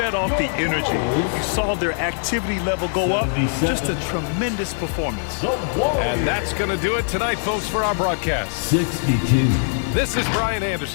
off the energy. You saw their activity level go up. Just a tremendous performance. And that's going to do it tonight, folks, for our broadcast. 62. This is Brian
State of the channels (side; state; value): right; silent; digital silence